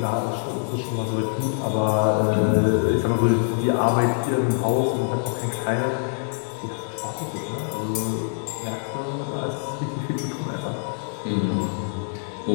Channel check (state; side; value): silent; right; digital silence